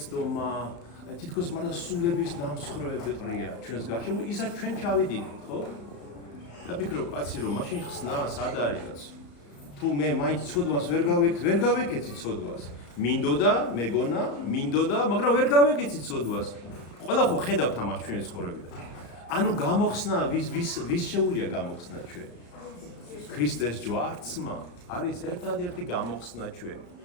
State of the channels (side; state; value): right; late; 34 ms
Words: თითქოს მარტო სულების ნამსხვრევები ყრია ჩვენს გარშემო, ისაც ჩვენ ჩავიდინით, ხო? და ფიქრობ, კაცი რომ მაშინ ხსნა სად არის კაცო? თუ მე მაინც ცოდვას ვერ გავეკეცი ცოდვას. მინდოდა, მეგონა, მაგრამ ვერ გავეკეცი ცოდვას. ყველა ხო ხედავთ ამას ჩვენი ცხოვრებიდან. ანუ გამოხსნა ვის შეუულია გამოხსნა ჩვენ? ქრისტეს ჯვარცმა არის ერთადერთი გამოხსნა ჩვენ.